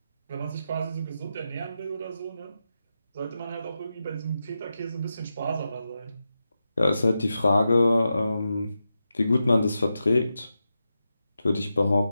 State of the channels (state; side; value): inverted; both; correlation -0.89